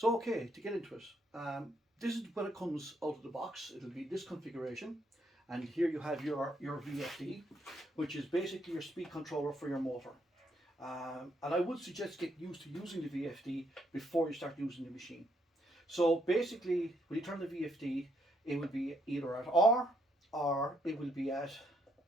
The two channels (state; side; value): normal; both; correlation 0.73